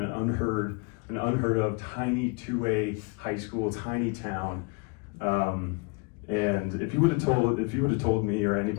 an unheard of tiny 2A high school, tiny town. And if you would have told me or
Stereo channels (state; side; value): quieter; right; 29.5 dB